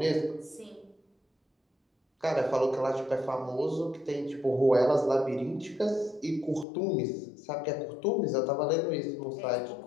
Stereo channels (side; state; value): right; drops out; at 6.7 s